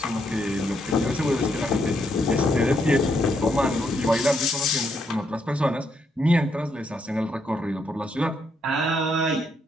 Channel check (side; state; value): both; normal; correlation 0.76